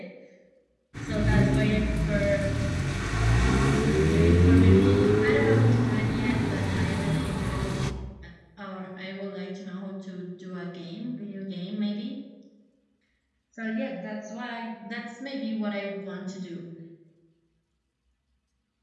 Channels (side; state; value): both; identical; correlation 1.00